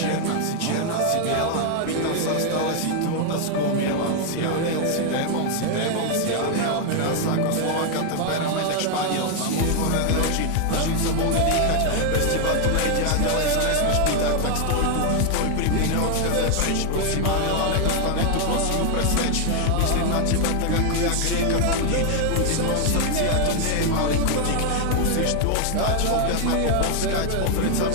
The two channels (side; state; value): both; different; correlation 0.00